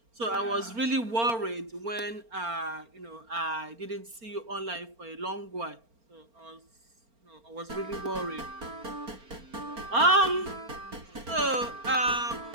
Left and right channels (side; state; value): left; late; 4.4 ms